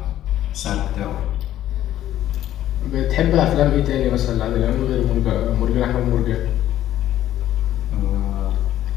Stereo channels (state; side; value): quieter; right; 12.6 dB